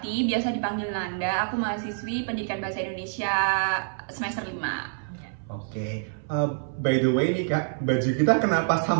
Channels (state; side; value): silent; left; 59 dB below the other